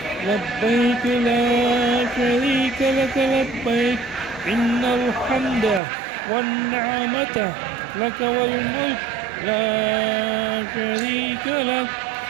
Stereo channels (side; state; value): left; drops out; at 5.8 s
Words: لبيك لا شريك لك لبيك إن الحمد والنعمة لك والملك لا شريك لك